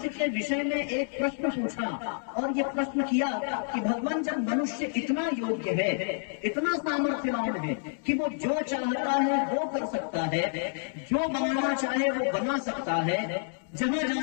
के विषय में एक प्रश्न पूछा और ये प्रश्न किया कि भगवान जब मनुष्य इतना योग्य है, इतना सामर्थ्यवान है कि वो जो चाहता है वो कर सकता है, जो बनाना चाहे वो बना सकता है, जहां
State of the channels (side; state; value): right; silent; digital silence